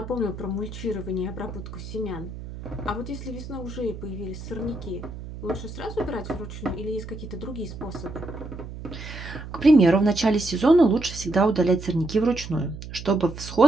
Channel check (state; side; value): noise; right; hum, 11 dB below the sound